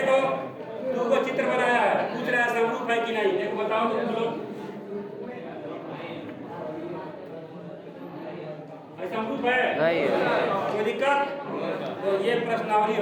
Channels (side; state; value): both; identical; correlation 1.00